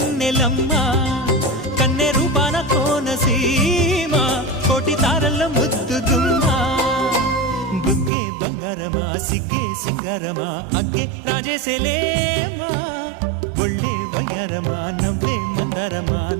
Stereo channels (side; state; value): left; drops out; at 8.1 s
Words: కన్నె రూపాన కోనసీమ కోటి తారల్లో ముద్దుగుమ్మా బుగ్గే బంగారమా సిగ్గే సింగారమా అగ్గే రాజేసేలేమా ఒళ్ళే వయ్యారమా నవ్వే మందారమా